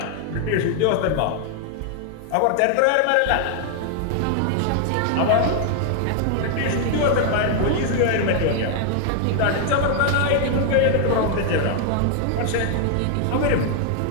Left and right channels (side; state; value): both; different; correlation 0.00